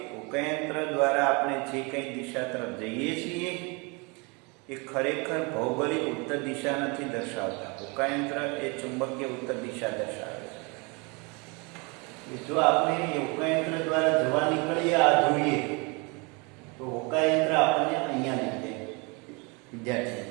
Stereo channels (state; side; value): quieter; left; 29.9 dB